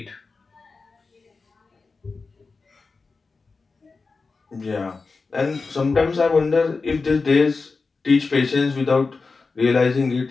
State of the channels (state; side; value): quieter; right; 4.2 dB